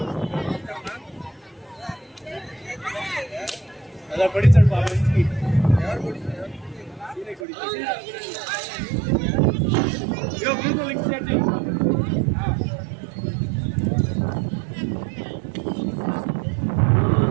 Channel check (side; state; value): left; drops out; at 7.5 s